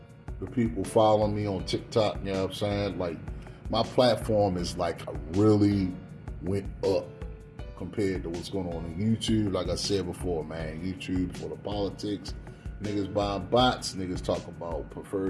people following me on TikTok, you know what I'm saying? Like, my platform is like really went up compared to what's going on YouTube. Like I said before, man, YouTube for the politics. Niggas buying bots, niggas talk about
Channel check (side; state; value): both; identical; correlation 1.00